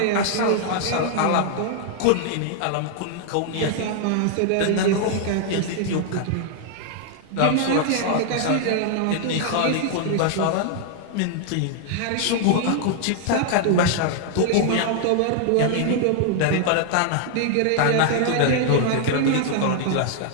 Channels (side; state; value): both; different; correlation 0.00